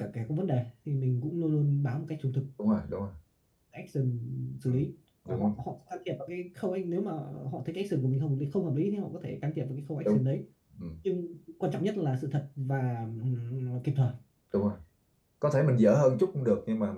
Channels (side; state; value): both; identical; correlation 1.00